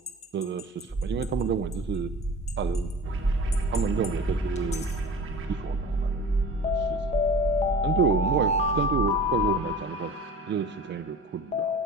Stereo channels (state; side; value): normal; both; correlation 0.39